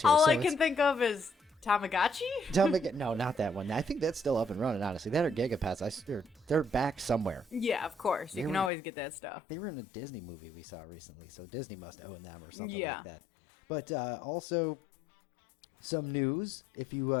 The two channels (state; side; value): drops out; right; at 8.7 s